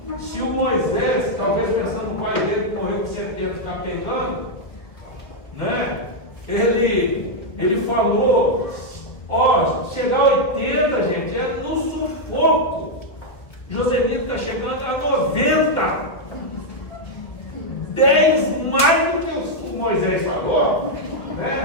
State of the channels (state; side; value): late; right; 1.7 ms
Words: Se o Moisés, talvez pensando no pai dele que morreu com 70, está pegando, né? Ele falou, chegar a 80, gente, é no sufoco. Josemita está chegando a 90. 10 mais do que o Moisés falou,